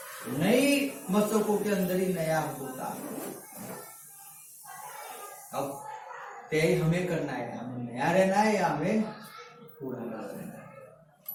नई मस्तकों के अंदर ही नया होता है। अब तय हमें करना है, हमें नया रहना है या हमें पुराना रहना है।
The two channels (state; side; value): identical; both; correlation 1.00